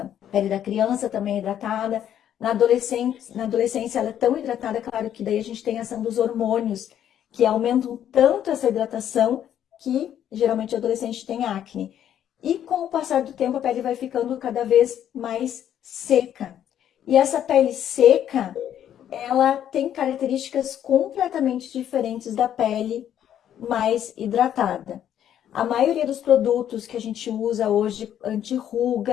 A pele da criança também é hidratada. Na adolescência ela é tão hidratada, claro que daí a gente tem a ação dos hormônios, que aumentam tanto essa hidratação que geralmente o adolescente tem acne. E com o passar do tempo a pele vai ficando cada vez mais seca. E essa pele seca, ela tem características completamente diferentes da pele mais hidratada. A maioria dos produtos que a gente usa hoje,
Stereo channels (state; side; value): quieter; right; 10.3 dB